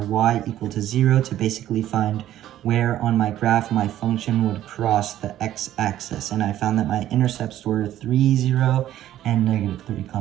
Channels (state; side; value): quieter; left; 12.7 dB